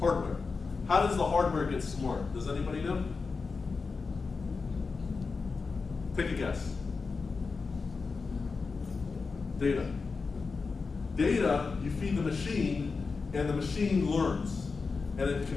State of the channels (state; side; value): quieter; right; 4.6 dB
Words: hardware. How does the hardware get smart? Does anybody know? Take a guess. Data. Data, you feed the machine, and the machine learns. And it